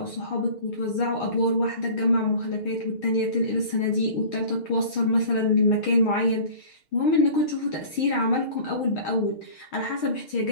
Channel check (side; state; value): right; late; 6.4 ms